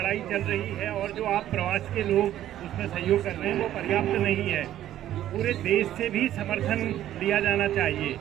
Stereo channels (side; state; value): left; quieter; 12.4 dB